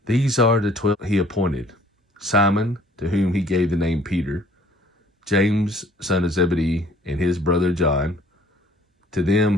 These are the 12 he appointed: Simon, to whom he gave the name Peter, James, son of Zebedee, and his brother John. To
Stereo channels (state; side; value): normal; both; correlation 0.56